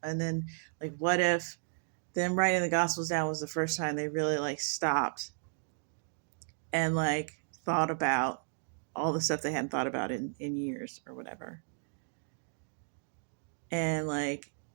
And then, like, what if them writing the gospels down was the first time they really, like, stopped and, like, thought about all the stuff they hadn't thought about in years or whatever. And, like,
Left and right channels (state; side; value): silent; left; digital silence